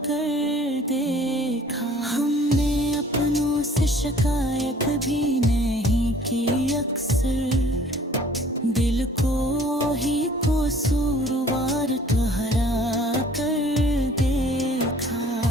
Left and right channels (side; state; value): both; normal; correlation 0.53